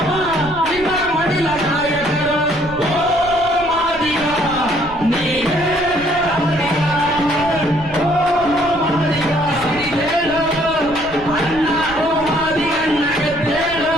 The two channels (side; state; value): right; noise; rumble, 16 dB below the sound